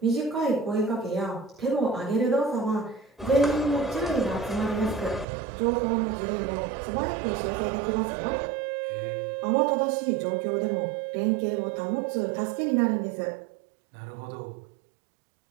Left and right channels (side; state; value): left; drops out; at 5.2 s